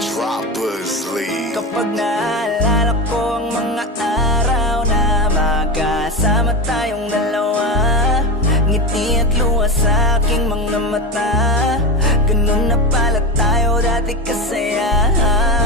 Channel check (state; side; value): normal; both; correlation 0.22